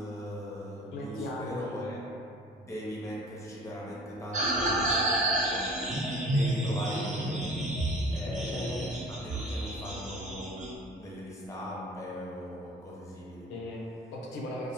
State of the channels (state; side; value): normal; both; correlation 0.45